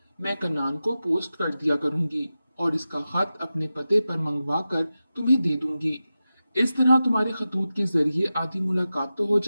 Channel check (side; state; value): both; inverted; correlation -0.93